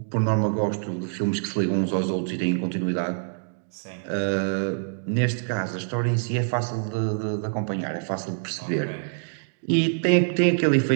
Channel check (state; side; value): silent; left; digital silence